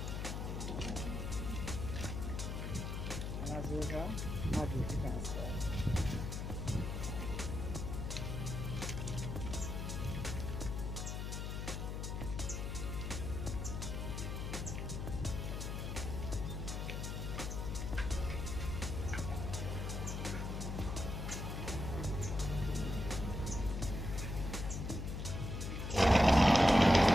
And as usual, I'll do it fast.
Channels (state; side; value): noise; left; hum, 4 dB below the sound